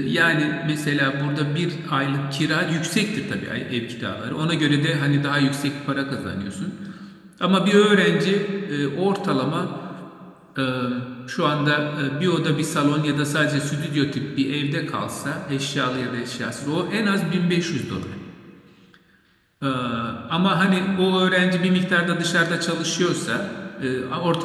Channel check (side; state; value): both; identical; correlation 1.00